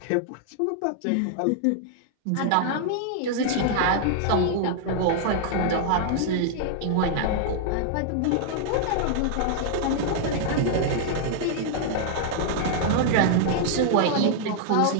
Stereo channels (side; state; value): both; different; correlation -0.01